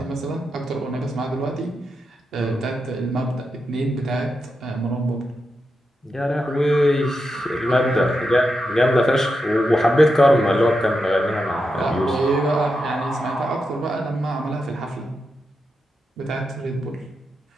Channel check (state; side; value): normal; both; correlation 0.87